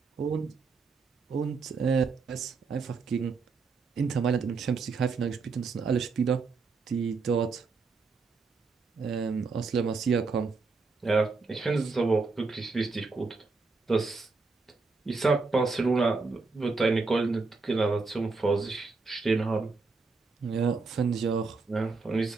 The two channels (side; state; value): left; quieter; 4.3 dB